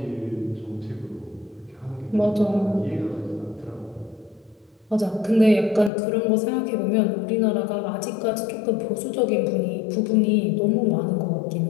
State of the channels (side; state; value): right; drops out; at 5.9 s